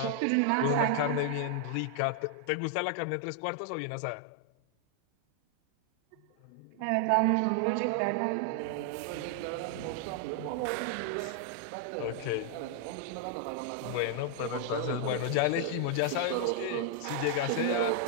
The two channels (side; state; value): both; different; correlation 0.00